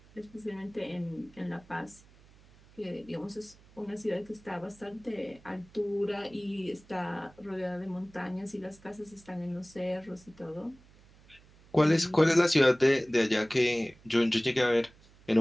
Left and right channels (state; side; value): noise; right; hum, 26 dB below the sound